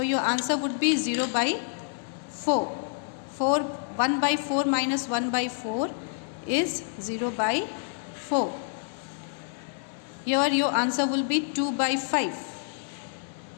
answer would be 0 by 4. 1 by 4 minus 1 by 4 is 0 by 4. Here your answer will be 2 by 5.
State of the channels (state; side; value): silent; right; digital silence